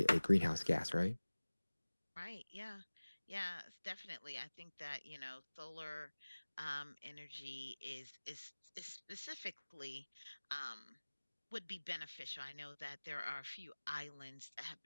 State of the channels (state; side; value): inverted; both; correlation -1.00